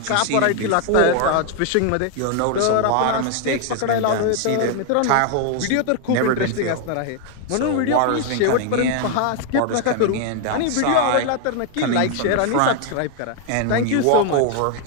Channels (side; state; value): both; different; correlation 0.00